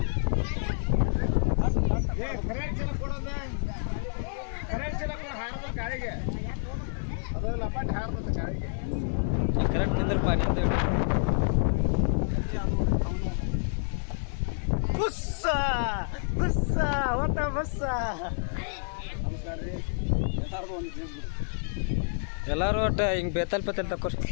ಗಾಳಿಗೆ ಅದು ಲಪಾಟ್ ಹಾರ್ಬೇಕು ಗಾಳಿಗೆ ಕರೆಕ್ಟ್ ನಿಂದ್ರಪ್ಪ ನಿಂದ ಬುಸ್ಸ ಬುಸ್ಸ ಹೊತ್ತ ಬುಸ್ಸ ಎಲ್ಲರೂ ಒಟ್ಟು ಹಿಂಗೆ ಬೇತಲ್ ತಕೋರಿ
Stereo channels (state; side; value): silent; right; digital silence